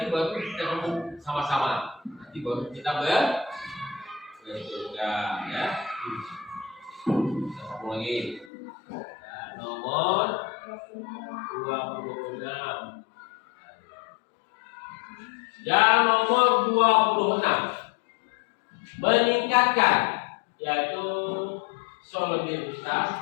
baru kita ngomong sama-sama. Nanti baru kita ya. Kita sambung lagi. Nomor 26. Yang nomor 26, meningkatkan yaitu solidaritas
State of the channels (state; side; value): drops out; right; at 8.5 s